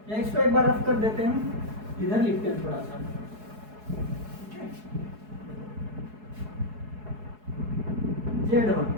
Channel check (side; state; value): left; late; 4.7 ms